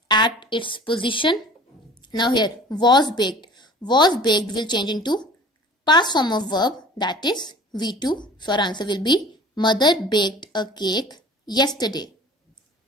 at its position. Now here was baked. Was baked will change into past form of verb, that is V2. So our answer will be mother baked a cake yesterday.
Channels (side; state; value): both; normal; correlation 0.44